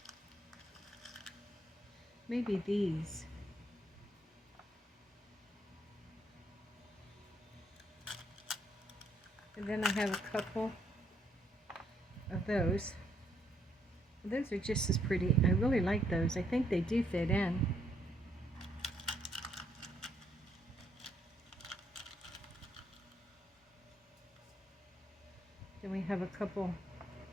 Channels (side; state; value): both; normal; correlation 0.71